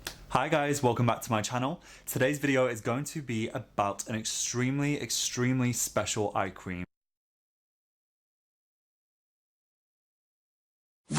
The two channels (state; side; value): identical; both; correlation 1.00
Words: Hi guys, welcome back to my channel. Today's video is going to be about an extremely special eye cream.